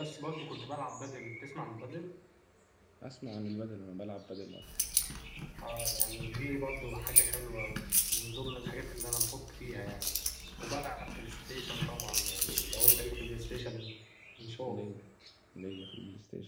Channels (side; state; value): both; identical; correlation 1.00